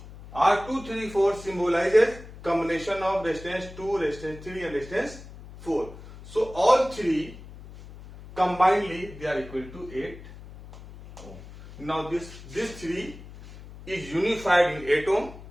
R2, 3, 4 symbolizes combination of resistance 2, resistance 3 and resistance 4. So all three combinedly they are equal to 8 ohm. Now this 3 is unified in 8 ohm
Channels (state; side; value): noise; left; hum, 16 dB below the sound